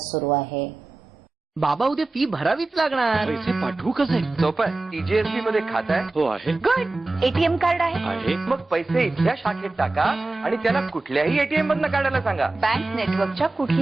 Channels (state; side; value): quieter; left; 3.2 dB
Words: आहे. बाबा उद्या फी भरावीच लागणार. पैसे पाठवू कसे? सोपं आहे. TJSB मध्ये खातं आहे. हो आहे. गुड. एटीएम कार्ड आहे. मग पैसे इथल्या शाखेत टाका आणि त्याला कुठल्याही एटीएम मधनं काढायला सांगा. बँक नेटवर्कच्या